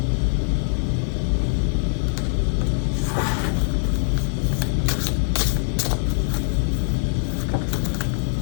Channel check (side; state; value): right; silent; 61 dB below the other